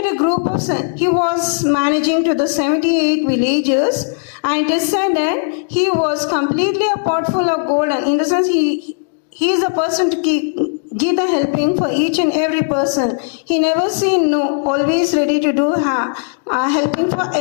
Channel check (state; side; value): silent; right; 68 dB below the other